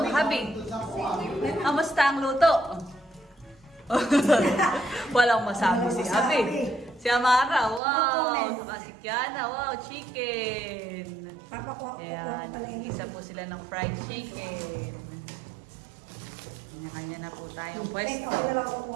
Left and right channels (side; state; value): left; drops out; at 7.8 s